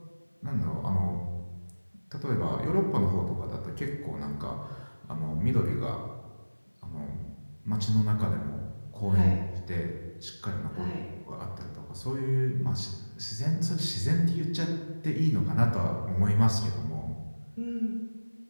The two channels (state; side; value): inverted; both; correlation -1.00